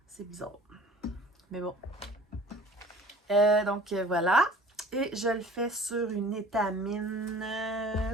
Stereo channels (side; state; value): both; normal; correlation 0.47